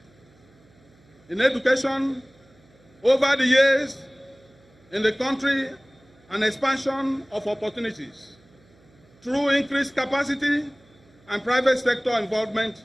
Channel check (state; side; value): noise; right; hum, 30 dB below the sound